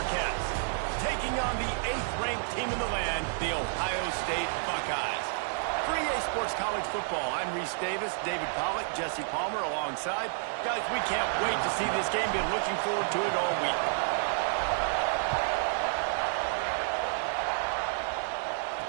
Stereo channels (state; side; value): silent; left; digital silence